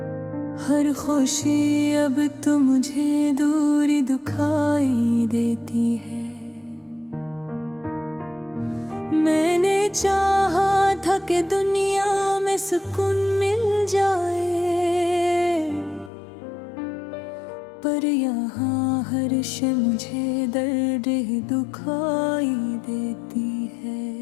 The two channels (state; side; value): drops out; right; at 16.1 s